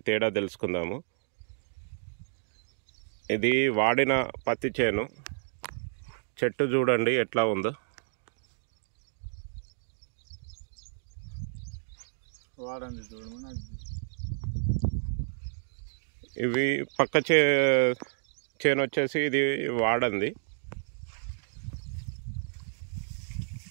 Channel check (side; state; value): left; silent; digital silence